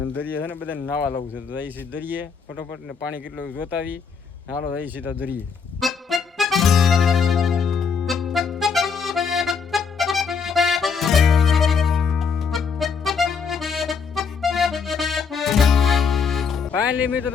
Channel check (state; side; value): quieter; right; 5.7 dB